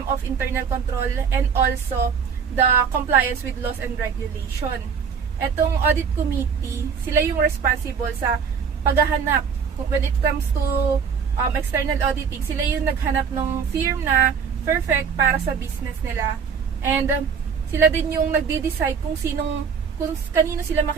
of internal control, and also the compliance with laws and regulation. Etong audit committee, sila yung responsible sa paghahanap. When it comes to external auditing, sila yung naghanap ng firm na perfect para sa business nila. And sila din yung nagde-decide kung kanino sila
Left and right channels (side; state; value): left; quieter; 6.4 dB